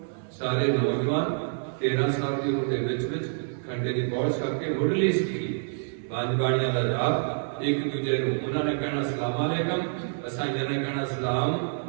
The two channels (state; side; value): silent; left; digital silence